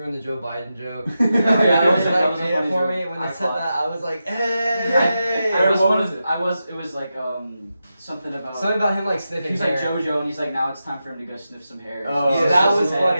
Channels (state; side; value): inverted; both; correlation -0.89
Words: in the Joe Biden joke. Yeah, I was that like, was a made it funny for joke. me when they I said thought- that. I was like, hey. It was like something about. Something about him like sniffing He's like hair. JoJo, and he's like, now it's time for him to go sniff some hair. Oh, So yeah, that it's was his